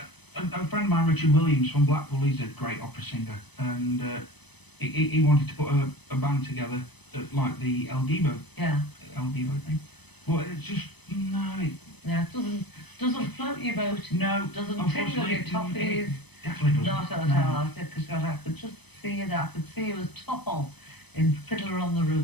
friend of mine, Richard Williams from Blackpool, he's a great opera singer, and he wanted to put a band together like the El Divo thing. But it's just, no, Yeah, it doesn't float your boat. no, Doesn't tingle unfortunately, your toffees. it definitely Not doesn't. at all. I said, because I could just see you there. I could see you as tall in Fiddler on the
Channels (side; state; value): right; late; 0.99 ms